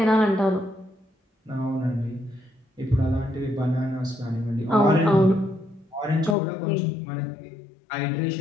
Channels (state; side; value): drops out; right; at 6.4 s